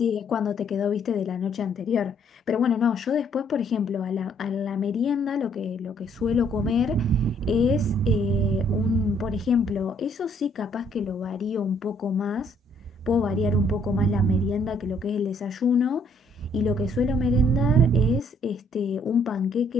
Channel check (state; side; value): normal; both; correlation 0.66